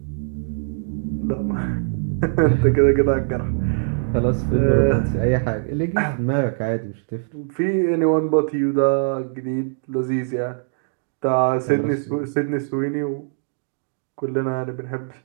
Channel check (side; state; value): left; silent; digital silence